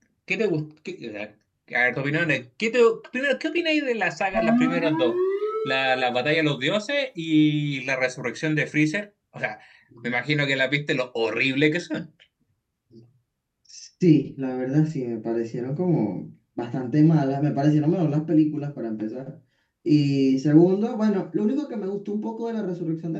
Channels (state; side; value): identical; both; correlation 1.00